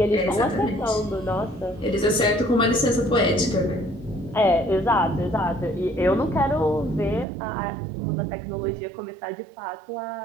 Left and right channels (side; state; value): left; drops out; at 7.2 s